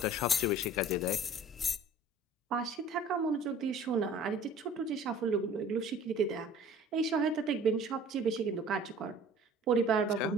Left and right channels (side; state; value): both; normal; correlation 0.48